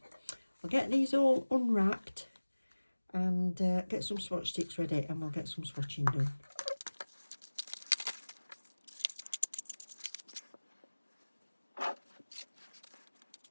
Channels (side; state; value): both; inverted; correlation -1.00